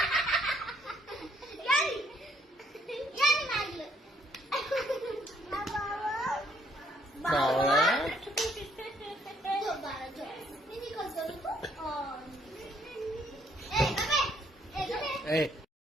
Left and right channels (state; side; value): normal; both; correlation 0.68